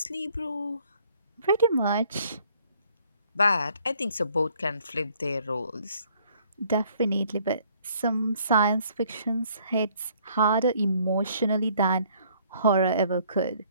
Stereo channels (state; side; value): inverted; both; correlation -0.62